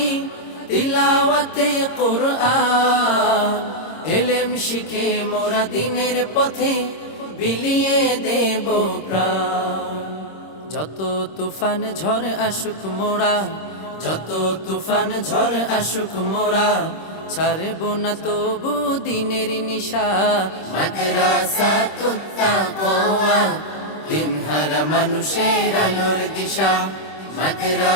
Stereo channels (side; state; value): right; late; 26 ms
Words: তিলাওয়াতে কুরআন। ইলম শিখে মোরা দিনের পথে বিলিয়ে দেব প্রাণ। যত তুফান ঝড় আসুক মোরা, যত তুফান ঝড় আসুক মোরা ছাড়ব না তবু দিনের নিশা। মাদ্রাসাতুত তাকওয়া দিনহার মানুষের আলোর দিশা।